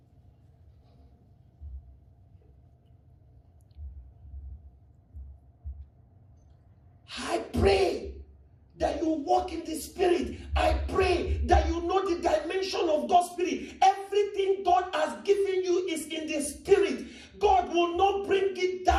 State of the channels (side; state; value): both; identical; correlation 1.00